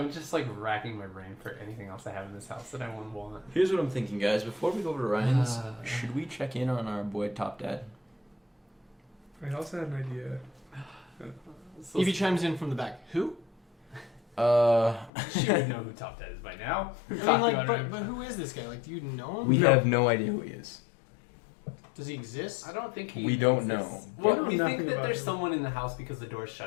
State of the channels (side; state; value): right; drops out; at 15.1 s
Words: just racking my brain for anything else I have in this house that I wouldn't want. Here's what I'm thinking, guys. Before we go over to Ryan's, should we check in on our boy Top Dad? I also had an idea. So Evie chimes in from the back. Who? she would know who Top Dad is by now. But who is this guy? Do you know him? We have no idea who he is. Does he exist? I don't think he. We don't exists. know. Well, We know we think nothing that about there's him. someone in the house because the door's